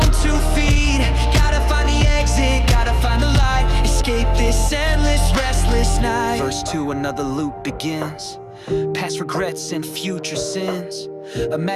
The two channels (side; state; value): both; identical; correlation 1.00